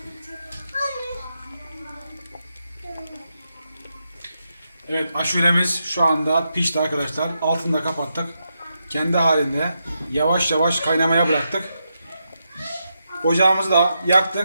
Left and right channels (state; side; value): inverted; both; correlation -0.84